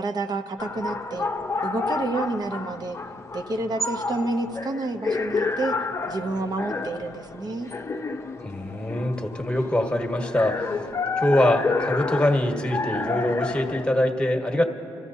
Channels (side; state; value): both; normal; correlation 0.81